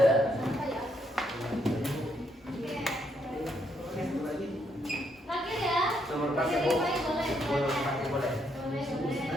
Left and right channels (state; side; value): normal; both; correlation 0.75